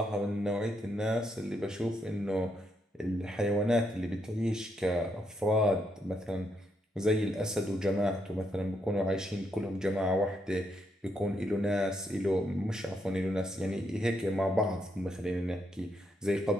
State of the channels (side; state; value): both; normal; correlation 0.78